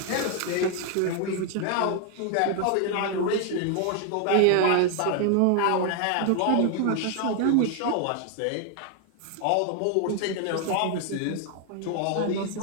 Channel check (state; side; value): different; both; correlation 0.00